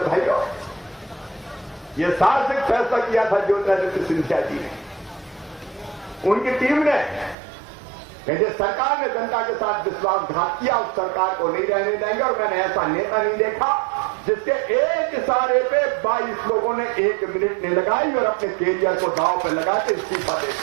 भाइयों, ये साहसिक फैसला किया था ज्योतिरादित्य सिंधिया जी ने, उनकी टीम ने, कि जिस सरकार ने जनता के साथ विश्वासघात किया उस सरकार को नहीं रहने देंगे। और मैंने ऐसा नेता नहीं देखा जिसके एक इशारे पे 22 लोगों ने 1 मिनट नहीं लगाई और अपने कैरियर को दांव पे लगा के इस्तीफा दे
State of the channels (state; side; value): drops out; left; at 7.4 s